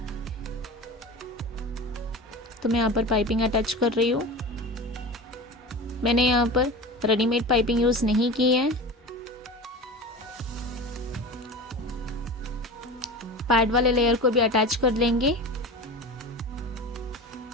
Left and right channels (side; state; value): both; normal; correlation 0.31